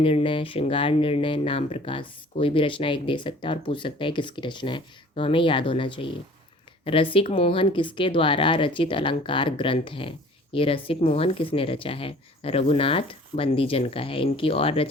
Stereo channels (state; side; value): normal; both; correlation 0.49